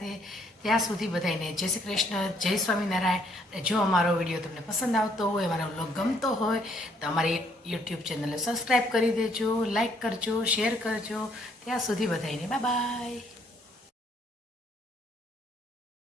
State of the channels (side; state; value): both; normal; correlation 0.67